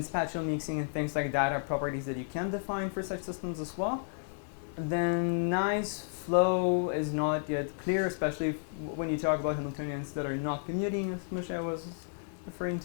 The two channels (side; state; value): right; silent; 56 dB below the other